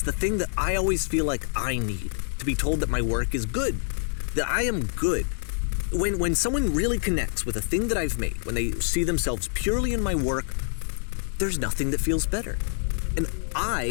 the thing that I always feel like I need, to be told that my work is good, that I am good. When someone really connects with a thing that I've made, when they see themselves purely in my work, there's nothing that feels better. And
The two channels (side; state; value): right; silent; digital silence